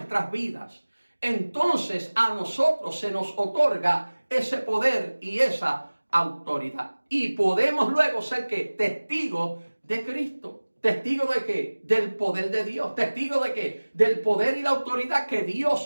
vidas, entonces a nosotros se nos otorga ese poder y esa autoridad. Y podemos luego ser ¿qué? Testigos de Cristo. ¿Testigo de qué? Del poder de Dios. ¿Testigo de qué? Del poder y la autoridad que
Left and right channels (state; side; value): inverted; both; correlation -1.00